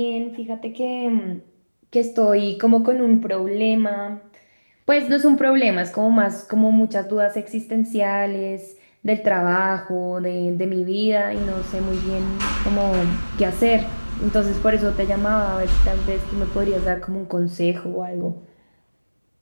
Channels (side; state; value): both; inverted; correlation -1.00